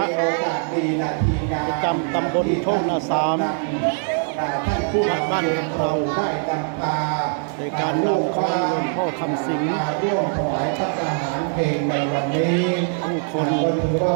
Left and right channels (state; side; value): silent; left; 57 dB below the other